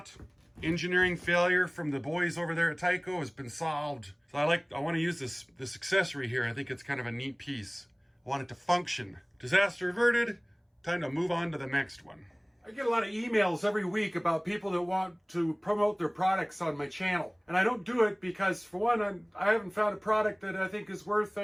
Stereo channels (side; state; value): both; identical; correlation 1.00